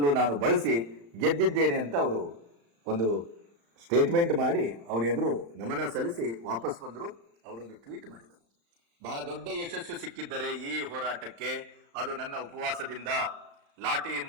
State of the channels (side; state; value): left; late; 35 ms